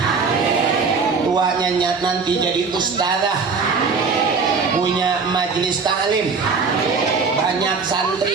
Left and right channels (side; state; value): left; quieter; 4.9 dB